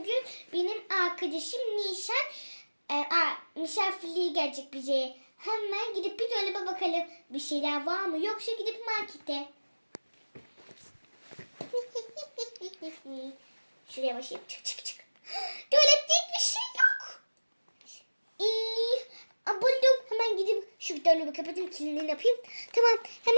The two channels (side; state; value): both; inverted; correlation -1.00